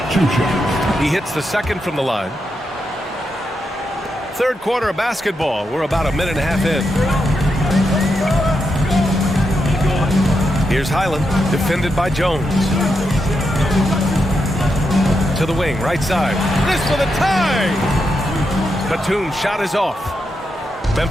2 shots. He hits the second from the line. Third quarter of basketball. We're about a minute and a half in. Here's Highland, defended by Jones. To the wing, right side. This for the tie! Batum's shot is off.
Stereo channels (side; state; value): both; normal; correlation 0.84